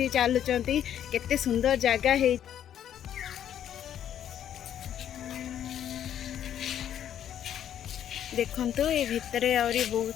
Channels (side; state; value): right; quieter; 10.2 dB